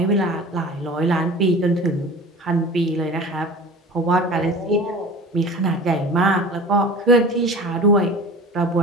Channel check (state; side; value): normal; both; correlation 0.38